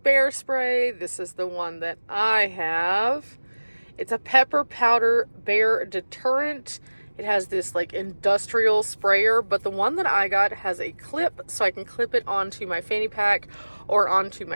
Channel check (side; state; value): both; inverted; correlation -1.00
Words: bear spray, this is the one that I have. It's a pepper powder bear deterrent. It has this like industrial sprayer, but the one that I got has a clip, so I can clip it onto my fanny pack or onto